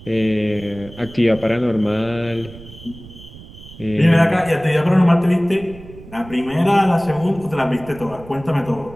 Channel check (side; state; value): right; noise; rumble, 18 dB below the sound